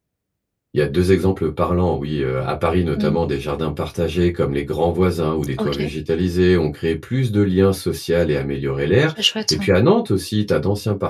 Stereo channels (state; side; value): identical; both; correlation 1.00